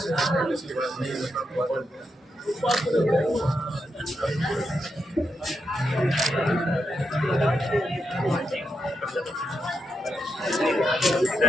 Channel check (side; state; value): both; normal; correlation 0.84